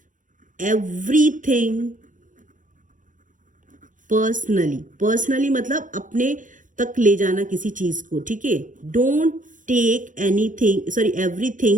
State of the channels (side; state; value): left; late; 0.38 ms